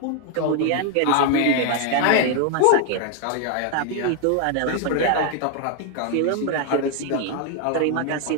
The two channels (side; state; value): both; different; correlation 0.01